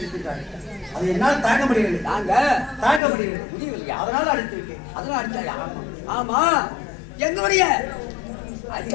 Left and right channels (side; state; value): right; drops out; at 3.0 s